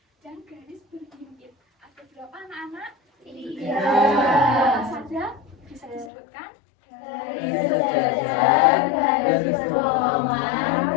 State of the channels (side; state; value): right; drops out; at 6.1 s